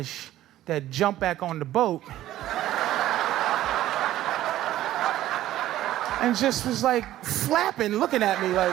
that jump back on the boat and just was like flapping, looking at me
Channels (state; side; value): quieter; left; 13.9 dB